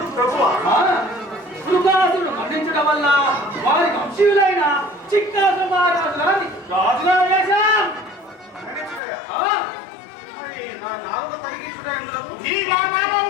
ప్రభువా? శృగాసురుడు మరణించడం వల్ల వారి వంశీయులైన చిత్రాసుర మహారాజు గారిని రాజుగా వేశాం. మరణించుటయా? ఆ, మరి నా నాలుగు తొలగించుట ఎందులకు? ఈ నా నామం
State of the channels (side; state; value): right; drops out; at 9.0 s